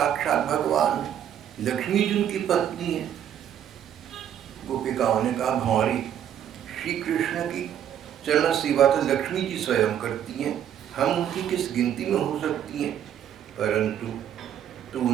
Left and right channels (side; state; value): left; quieter; 10.0 dB